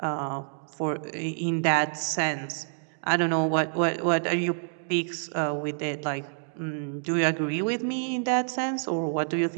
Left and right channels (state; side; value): silent; left; digital silence